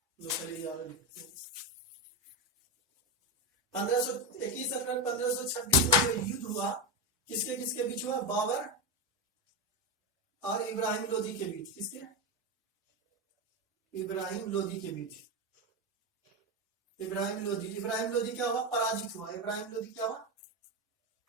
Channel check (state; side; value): normal; both; correlation 0.13